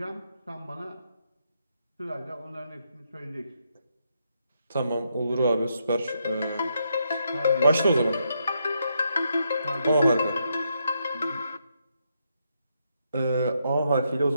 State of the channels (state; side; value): inverted; both; correlation -0.79